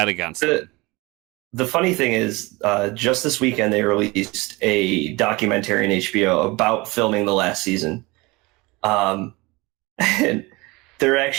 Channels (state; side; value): quieter; left; 23.8 dB